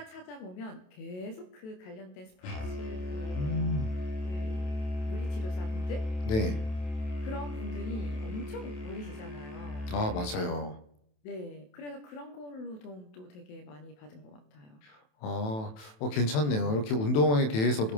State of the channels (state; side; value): late; right; 27 ms